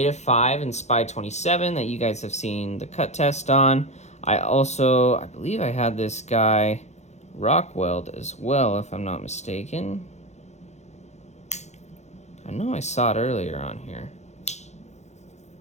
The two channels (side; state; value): right; late; 0.33 ms